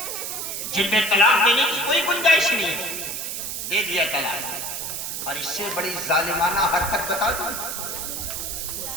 جن میں طلاق دینے کی کوئی گنجائش نہیں ہے، دے دیا طلاق. اور اس سے بڑی ظالمانہ حرکت بتا دوں،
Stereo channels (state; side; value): noise; right; hiss, 4 dB below the sound